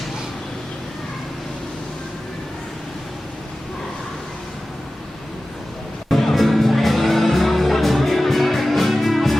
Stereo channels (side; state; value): both; normal; correlation 0.95